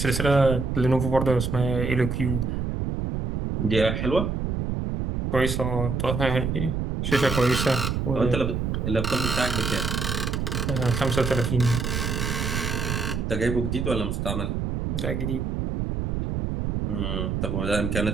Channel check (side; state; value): right; noise; rumble, 1 dB below the sound